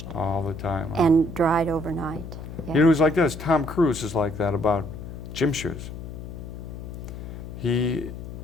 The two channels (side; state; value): left; noise; hum, 10 dB below the sound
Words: All the time. Huh? and dried overnight. Yeah. You know, it was like this. Tom Cruise is like that about gym shoes. He